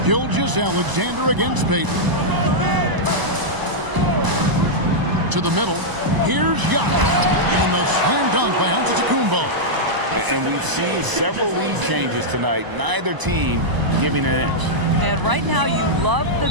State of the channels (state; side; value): late; left; 1.0 ms